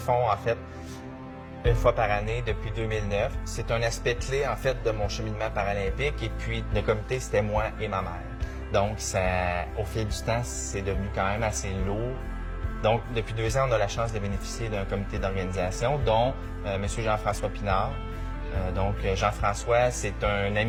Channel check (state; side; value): identical; both; correlation 1.00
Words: en fait, une fois par année depuis 2009. C'est un aspect clé, en fait, de mon cheminement paralympique. Et puis, le comité, c'était moi et ma mère. Donc, au fil du temps, c'est devenu quand même assez lourd. Donc, depuis 2 ans, on a la chance de bénéficier d'un comité d'organisation, dont M. Jean-François Pinard. Donc, Jean-François, c'est un